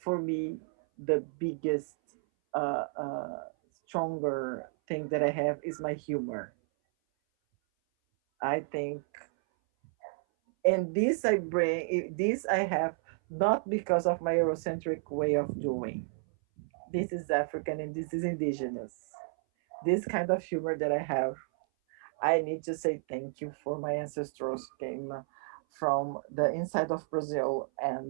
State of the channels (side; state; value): left; silent; 57 dB below the other